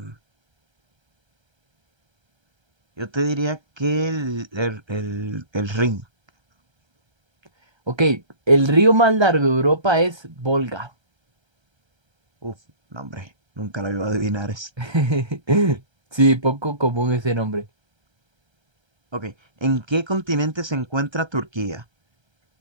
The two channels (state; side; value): late; left; 1.3 ms